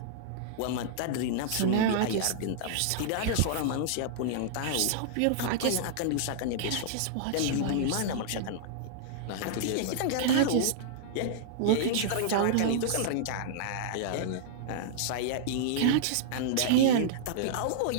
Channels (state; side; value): different; both; correlation -0.02